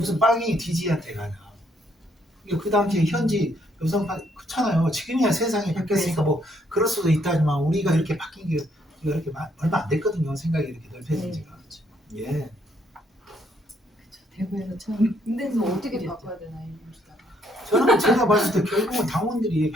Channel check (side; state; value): both; normal; correlation 0.70